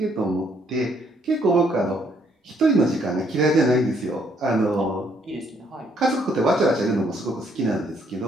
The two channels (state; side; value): normal; both; correlation 0.68